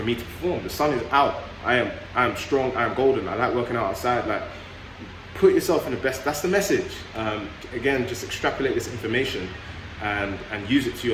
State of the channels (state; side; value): identical; both; correlation 1.00